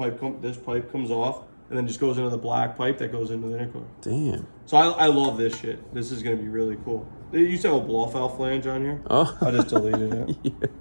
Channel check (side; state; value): both; inverted; correlation -1.00